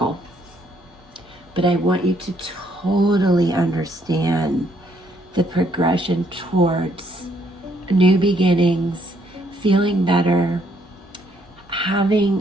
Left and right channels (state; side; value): normal; both; correlation 0.70